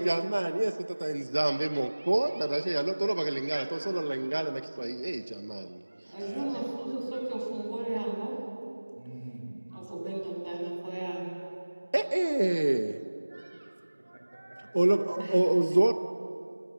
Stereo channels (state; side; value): inverted; both; correlation -1.00